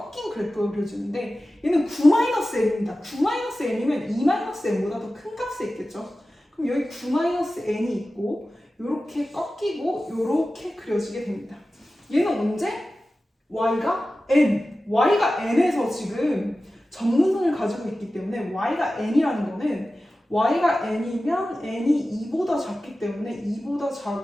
그래프가 그려지는데 얘는 9-n입니다. 9-n이면 2-n보다 더 큰 값에 있겠죠. 그럼 여기 9-n이 있고 이렇게 꺾이고 이렇게 그려지게 됩니다. 얘는 언제? y가 n에서 지금 정근선을 가지고 있기 때문에 y가 n이라는 거는 y가 n이면 n이 2보다 작기 때문에 2보다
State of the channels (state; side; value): normal; both; correlation 0.95